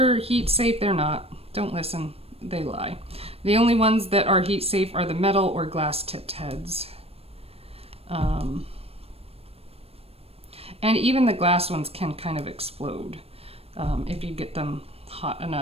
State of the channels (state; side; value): late; left; 0.28 ms